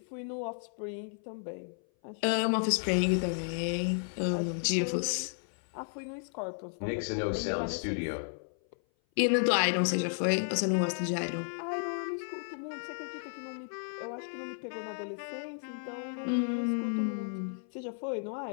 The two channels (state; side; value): silent; right; 56 dB below the other